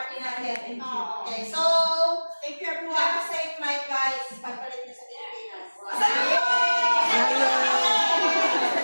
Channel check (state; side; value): inverted; both; correlation -1.00